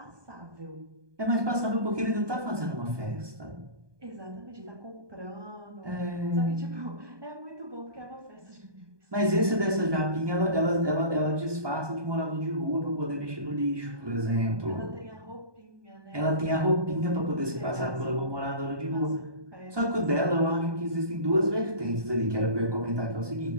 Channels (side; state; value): left; late; 1.2 ms